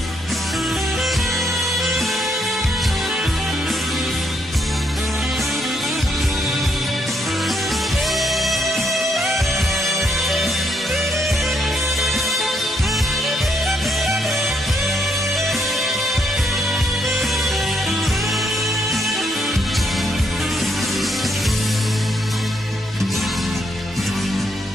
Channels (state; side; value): normal; both; correlation 0.75